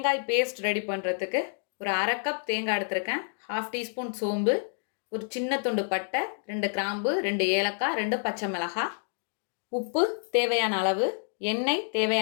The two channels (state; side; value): silent; right; digital silence